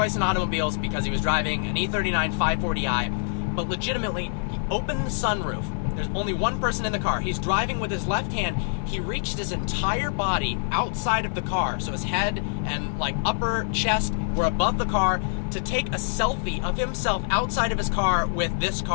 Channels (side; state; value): right; silent; digital silence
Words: in automobiles because he was driving an E39 540i, but legitimately, he opened the sunroof. There's only one person in the car. He's driving with his left hand. He reached his entire body outside of the car, so his head and like upper chest were above the car, to take a selfie of himself outside of his car with this